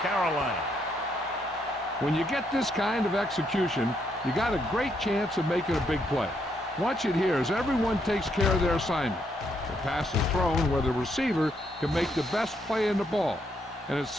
When you get this kind of execution, you got a great chance of making a big play. Watch it here as everyone takes care of their assignment. The pass is thrown where the receiver can make the best play in the ball, and it's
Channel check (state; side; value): normal; both; correlation 0.75